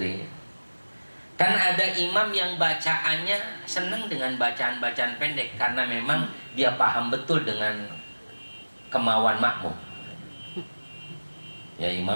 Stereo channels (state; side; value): inverted; both; correlation -1.00